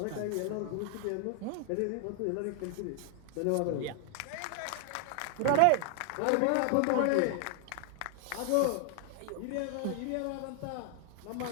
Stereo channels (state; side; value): different; both; correlation 0.00